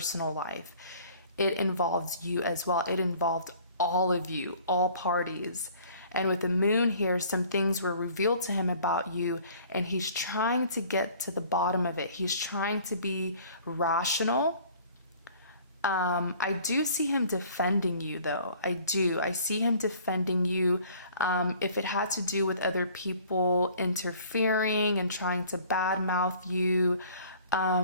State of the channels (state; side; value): inverted; both; correlation -0.52